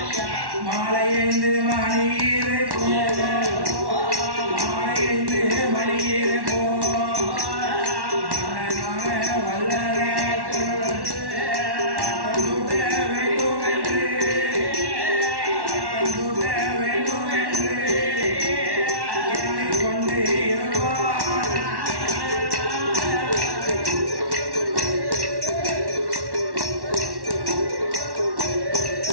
மாலை 5 மணியிலே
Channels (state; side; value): late; left; 1.1 ms